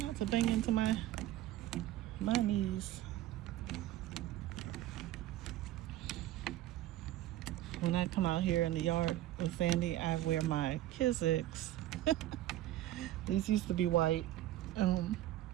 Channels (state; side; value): quieter; left; 14.2 dB